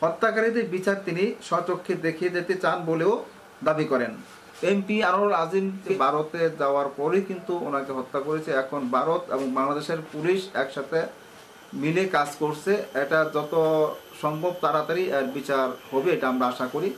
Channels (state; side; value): identical; both; correlation 1.00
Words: হত্যাকারীদের বিচার তিনি স্বচক্ষে দেখিয়ে যেতে চান বলেও দাবি করেন। এমপি আনোয়ারুল আজিম ভারতে যাওয়ার পরেই কিন্তু ওনাকে হত্যা করেছে। এখন ভারত এবং বাংলাদেশের পুলিশ একসাথে মিলে কাজ করছে। এটা যত সম্ভব তাড়াতাড়ি এর বিচার হবে, এটা আমরা আশা করি।